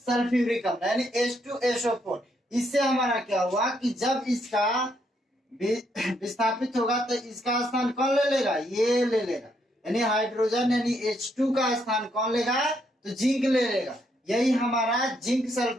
अम्ल यानी H2SO4, इससे हमारा क्या हुआ कि जब इसका विस्थापित होगा तो इसका स्थान कौन ले लेगा, ये ले लेगा, यानी हाइड्रोजन यानी H2 का स्थान कौन लेगा, तो जिंक ले लेगा। यही हमारा जिंक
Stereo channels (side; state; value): both; normal; correlation 0.75